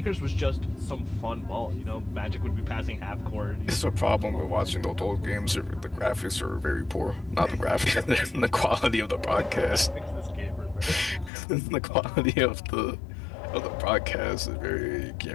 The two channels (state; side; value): drops out; right; at 11.3 s